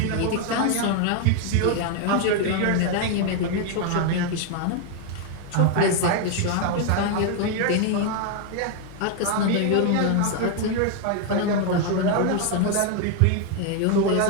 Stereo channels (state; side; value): different; both; correlation 0.01